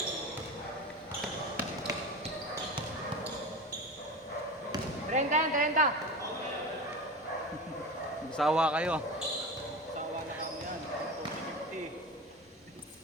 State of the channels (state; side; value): normal; both; correlation 0.28